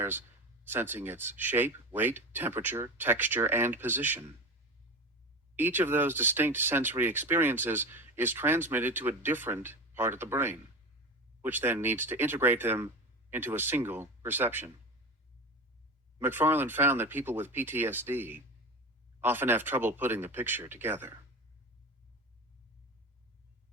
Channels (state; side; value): normal; both; correlation 0.28